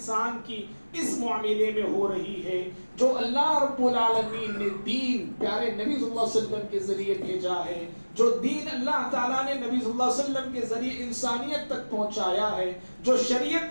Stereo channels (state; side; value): inverted; both; correlation -1.00